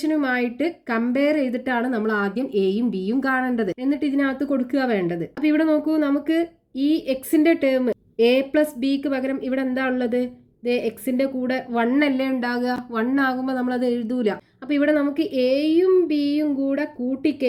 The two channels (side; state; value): both; identical; correlation 1.00